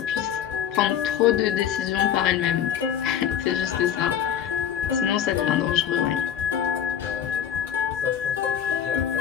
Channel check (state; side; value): quieter; right; 9.3 dB